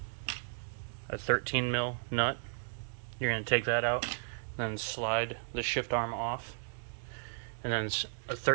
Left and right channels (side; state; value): left; silent; digital silence